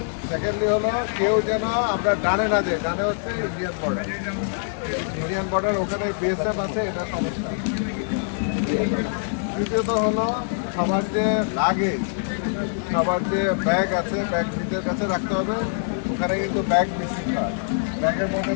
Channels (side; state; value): right; silent; digital silence